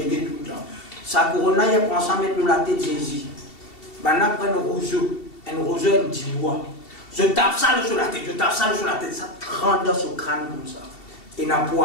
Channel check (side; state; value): right; late; 2.7 ms